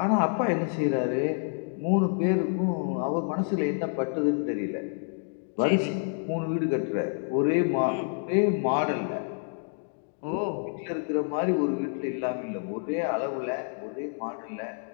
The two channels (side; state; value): right; silent; 59 dB below the other